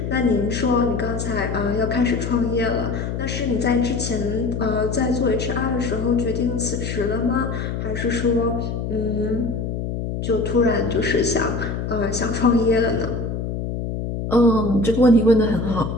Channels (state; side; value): noise; left; hum, 4 dB below the sound